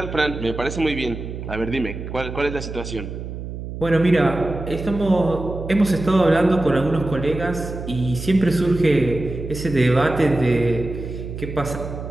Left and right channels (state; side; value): noise; right; hum, 8 dB below the sound